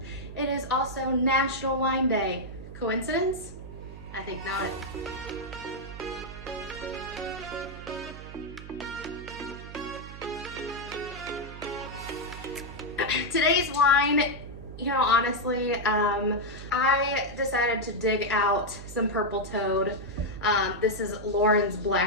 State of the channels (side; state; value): right; noise; hum, 13 dB below the sound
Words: it is also National Wine Day. Coincidence? I think not. Today's wine, honestly, I decided to dig out some Purple Toad. This is Lauren's